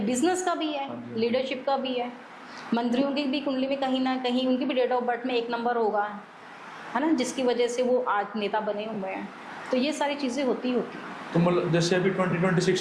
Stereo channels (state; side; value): identical; both; correlation 1.00